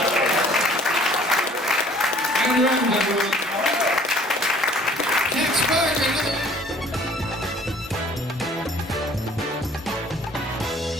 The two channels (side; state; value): both; normal; correlation 0.55